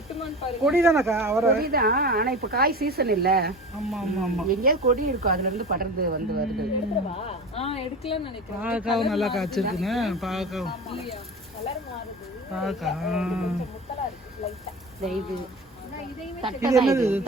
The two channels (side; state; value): both; normal; correlation 0.32